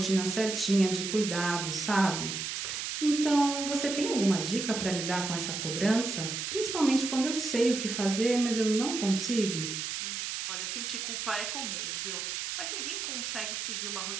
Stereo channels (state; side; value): noise; right; hiss, 4 dB below the sound